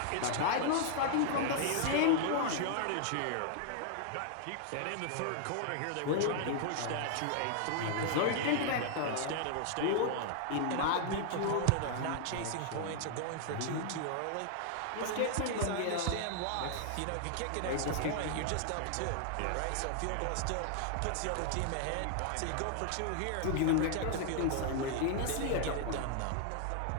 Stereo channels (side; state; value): both; different; correlation 0.00